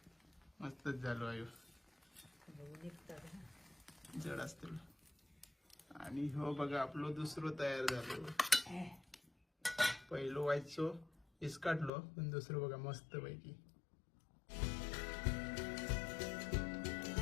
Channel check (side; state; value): right; drops out; at 11.9 s